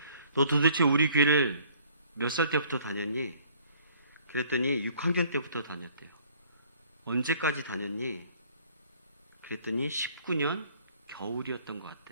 너 도대체 우리 교회를 몇 살 때부터 다녔니? 그랬더니 6학년 때부터 다녔대요. 언제까지 다녔니? 그랬더니 19년 겨울이었던 것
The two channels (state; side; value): inverted; both; correlation -0.58